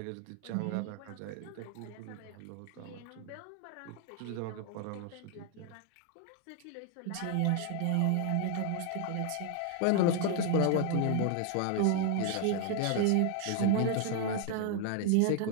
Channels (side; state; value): both; different; correlation 0.00